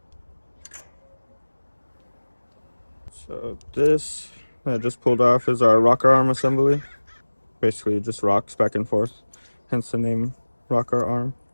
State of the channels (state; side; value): inverted; both; correlation -1.00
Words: So this I just pulled off is our rocker arm assembly. Basically it just rocks back and forth, hence the name rocker arm.